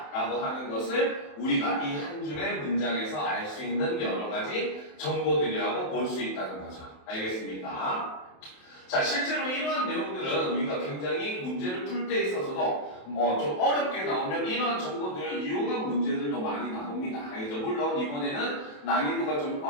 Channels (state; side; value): late; right; 27 ms